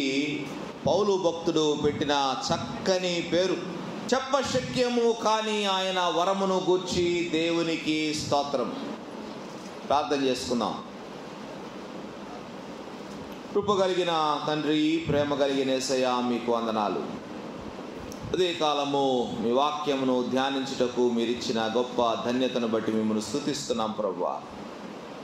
పౌలు భక్తుడు పెట్టిన చక్కని పేరు. చెప్పశక్యము కాని ఆయన వరమును గూర్చి దేవునికి స్తోత్రం. ప్రార్థన చేసుకుందాం. కృప కలిగిన తండ్రి, ప్రేమ కలిగిన యేసయ్య, మీకు వందనాలు. అదే కాలము మీ వాక్యమును ధ్యానించుటకు మీరిచ్చిన గొప్ప ధన్యతను బట్టి మిమ్మల్ని స్తుతిస్తున్నాం ప్రభువా.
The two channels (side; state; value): both; identical; correlation 1.00